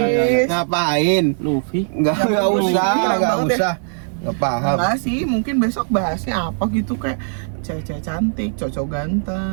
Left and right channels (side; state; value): left; silent; digital silence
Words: Ngapain? Luffy. Enggak usah, Enggak enggak banget usah. Enggak paham. Enggak sih, mungkin besok bahasnya apa gitu kayak cewek-cewek cantik, cowok